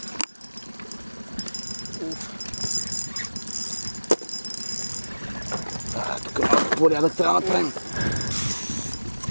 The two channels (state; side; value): inverted; both; correlation -1.00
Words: Тук малко порядък трябва да направим.